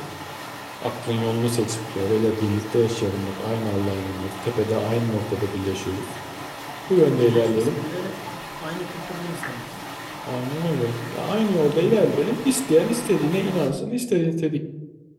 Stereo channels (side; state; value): both; identical; correlation 1.00